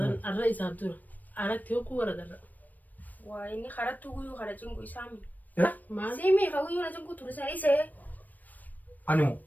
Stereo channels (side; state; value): right; late; 0.084 ms